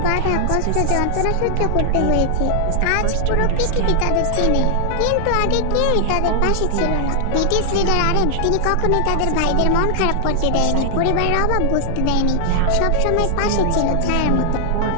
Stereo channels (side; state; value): both; different; correlation -0.01